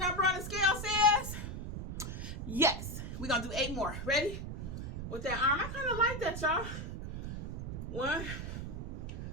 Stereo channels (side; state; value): right; noise; rumble, 6 dB below the sound